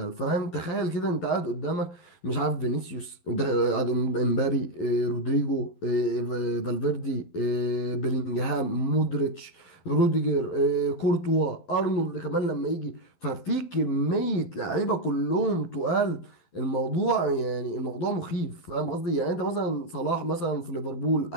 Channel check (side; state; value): right; late; 12 ms